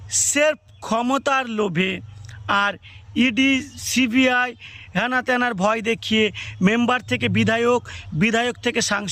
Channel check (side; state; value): both; identical; correlation 1.00